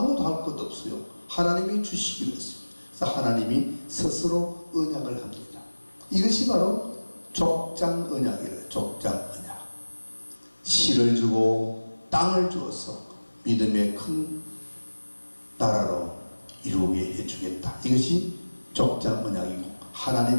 할 것도 없어요. 하나님이 주시기로 했습니다. 그래서 하나님이 스스로 언약을 합니다. 이것이 바로 족장 언약이래요. 족장 언약. 씨를 주고 땅을 주어서 믿음의 큰 나라로 이루게 해주겠다. 이것이 족장 언약이고,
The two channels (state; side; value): inverted; both; correlation -1.00